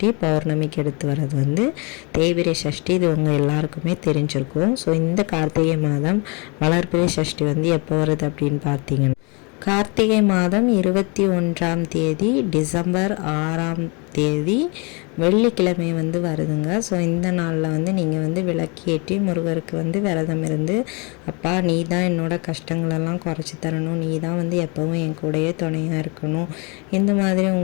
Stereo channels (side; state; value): right; quieter; 31.0 dB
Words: பௌர்ணமிக்கு அடுத்து வர்றது வந்து தேய்பிறை சஷ்டி. இது உங்கள் எல்லாருக்குமே தெரிஞ்சிருக்கும். ஸோ இந்த கார்த்திகை மாதம் வளர்பிறை சஷ்டி வந்து எப்போ வருது அப்படின்னு பார்த்தீங்கன்னா கார்த்திகை மாதம் 21ஆம் தேதி டிசம்பர் 6ஆம் தேதி வெள்ளிக்கிழமை வந்து வருதுங்க. ஸோ இந்த நாளில் வந்து நீங்கள் வந்து விளக்கேற்றி முருகருக்கு வந்து விரதம் இருந்து, அப்பா நீ தான் என்னோட கஷ்டங்களெல்லாம் குறைச்சி தரணும், நீ தான் வந்து எப்போவும் என் கூடயே துணையாக இருக்கணும், இந்த மாதிரி